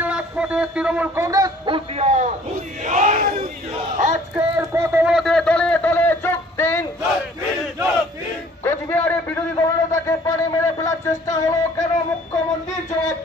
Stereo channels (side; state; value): both; normal; correlation 0.54